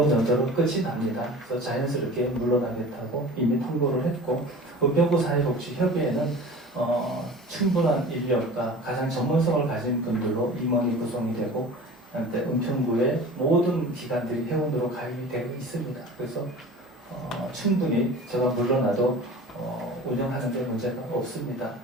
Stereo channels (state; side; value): normal; both; correlation 0.39